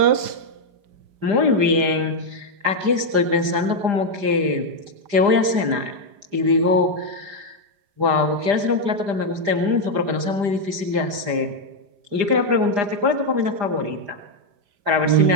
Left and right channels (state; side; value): late; left; 5.0 ms